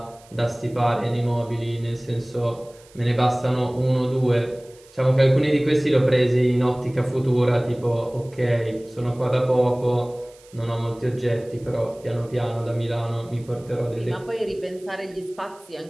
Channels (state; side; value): noise; right; hiss, 27 dB below the sound